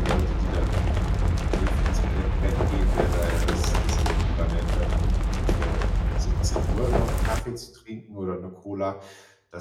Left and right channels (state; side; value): identical; both; correlation 1.00